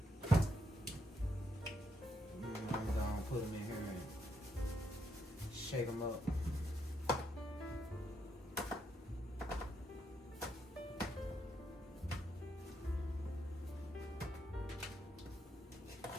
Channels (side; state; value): both; normal; correlation 0.78